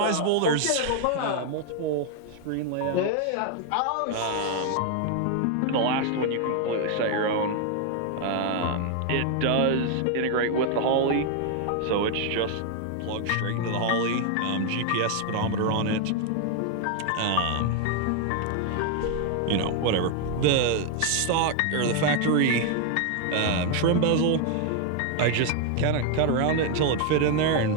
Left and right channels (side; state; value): both; different; correlation 0.00